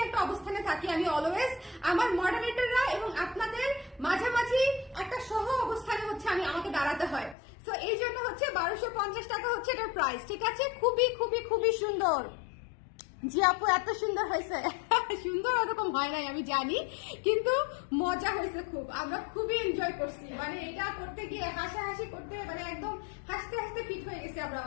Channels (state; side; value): drops out; right; at 7.4 s